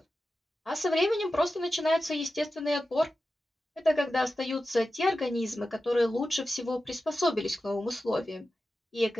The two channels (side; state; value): both; normal; correlation 0.92